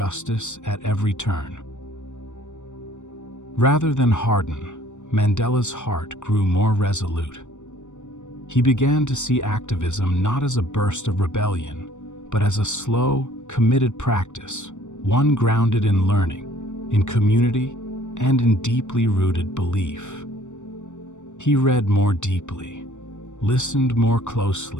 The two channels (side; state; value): right; late; 0.85 ms